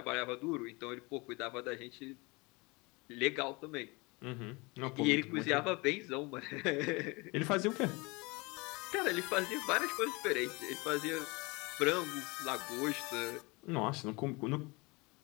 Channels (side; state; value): right; quieter; 26.2 dB